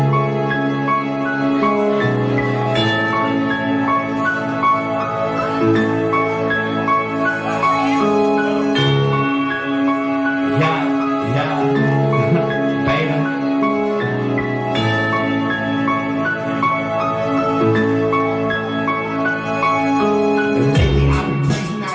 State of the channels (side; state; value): both; identical; correlation 1.00